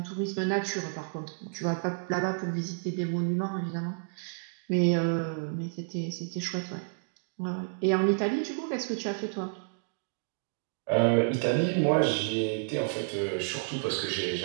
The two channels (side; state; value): left; silent; digital silence